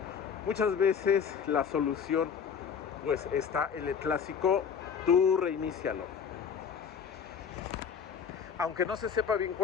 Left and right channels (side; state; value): right; quieter; 6.9 dB